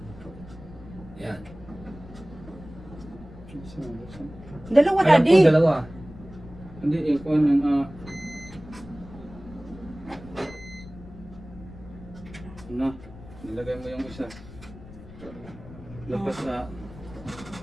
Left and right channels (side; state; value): left; noise; rumble, 17 dB below the sound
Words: Yan. Dalawa, Alam daddy. ko dalawa. Hindi, yung kuhan ng ano, nilagay mo yung isa. Labas na.